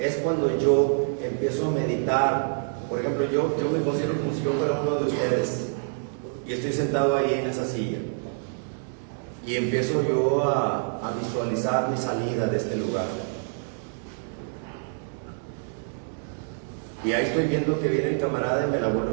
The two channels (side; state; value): left; silent; digital silence